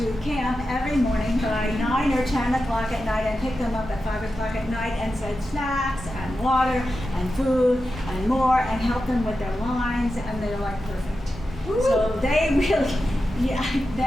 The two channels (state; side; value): normal; both; correlation 0.91